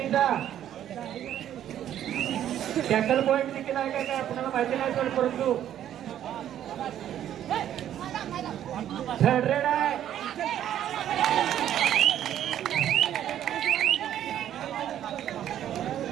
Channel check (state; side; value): quieter; left; 11.0 dB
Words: टॅकल पॉईंट देखील आहे काय आपल्याला माहिती नाही पण परंतु 100 आहे.